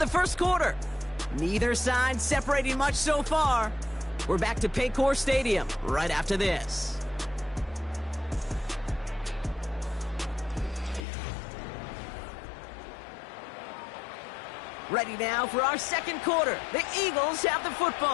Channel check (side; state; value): right; drops out; at 11.1 s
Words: the 1st quarter. Neither side separating much so far. We're back to Paycor Stadium right after this. Ready now for our second quarter. The Eagles have the